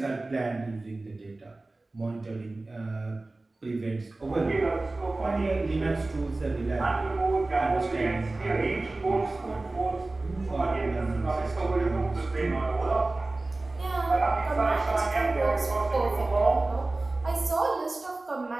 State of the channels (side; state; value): left; quieter; 3.1 dB